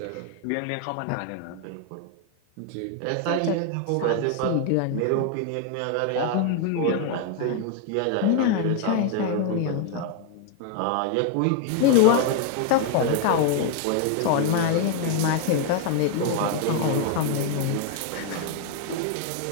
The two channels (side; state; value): both; different; correlation 0.00